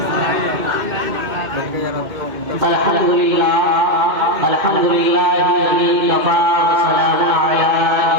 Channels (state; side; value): late; left; 2.1 ms